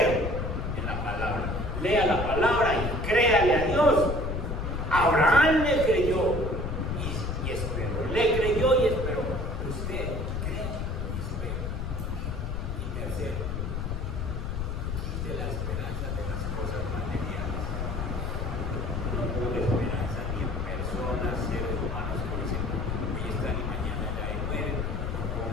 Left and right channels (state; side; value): noise; left; rumble, 3 dB below the sound